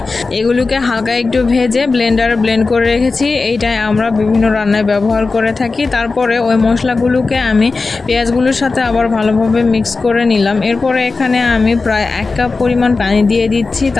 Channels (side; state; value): right; quieter; 4.0 dB